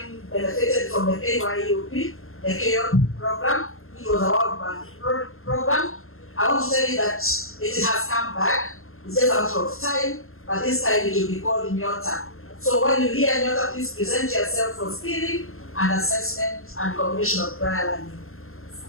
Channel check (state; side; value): late; right; 0.61 ms